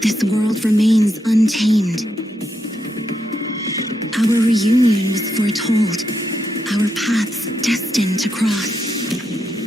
this world remains untamed. Our reunion was foretold, our paths destined to cross.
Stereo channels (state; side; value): normal; both; correlation 0.82